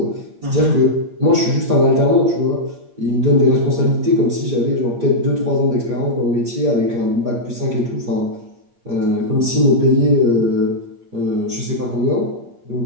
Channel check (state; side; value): late; left; 8.5 ms